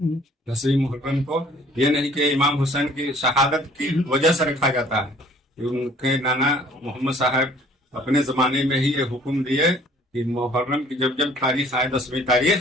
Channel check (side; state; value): both; normal; correlation 0.55